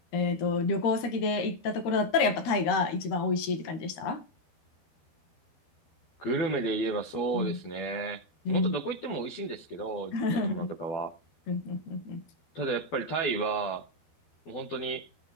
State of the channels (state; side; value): late; right; 13 ms